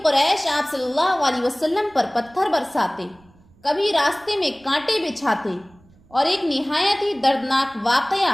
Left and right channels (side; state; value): right; noise; rumble, 29 dB below the sound